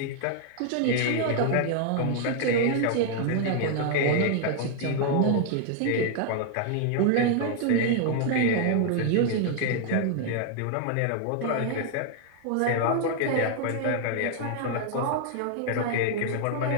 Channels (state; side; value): different; both; correlation 0.00